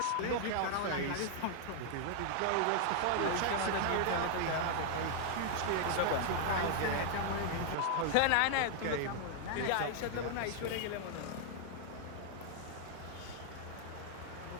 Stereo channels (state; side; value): different; both; correlation 0.00